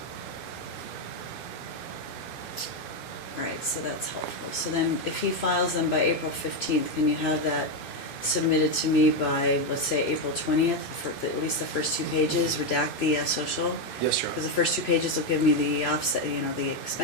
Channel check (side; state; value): right; late; 2.5 ms